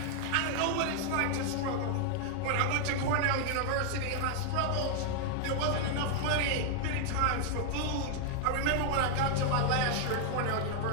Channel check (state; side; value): different; both; correlation 0.00